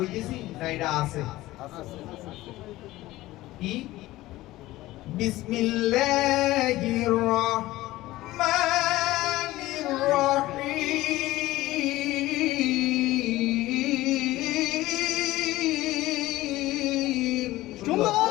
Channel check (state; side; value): quieter; right; 17.2 dB